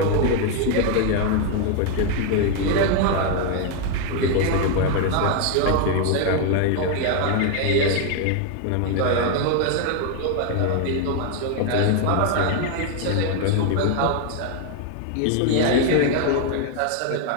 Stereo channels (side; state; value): both; different; correlation 0.01